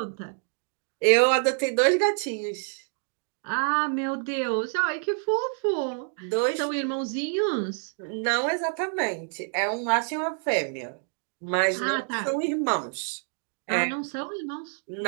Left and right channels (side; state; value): left; silent; 55 dB below the other